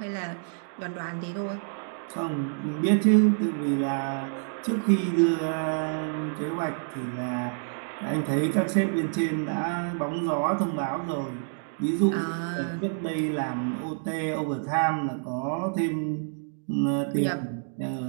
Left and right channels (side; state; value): left; silent; digital silence